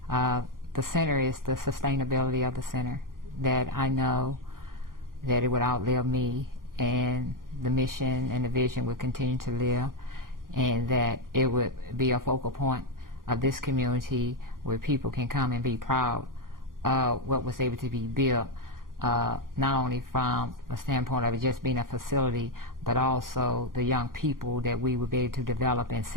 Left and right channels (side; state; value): left; late; 0.91 ms